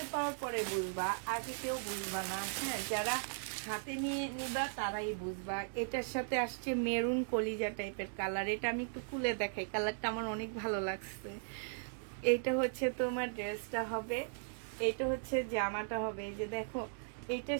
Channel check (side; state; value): left; silent; digital silence